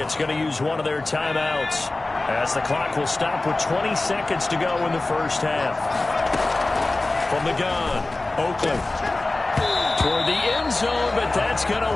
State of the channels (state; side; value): quieter; right; 3.0 dB